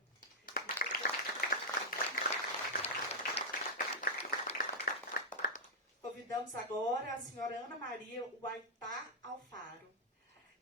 Convidamos agora a senhora Ana Maria Huaytá Alfaro.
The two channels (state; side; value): normal; both; correlation -0.05